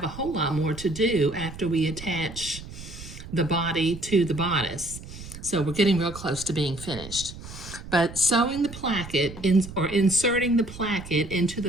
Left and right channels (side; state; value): right; noise; rumble, 13 dB below the sound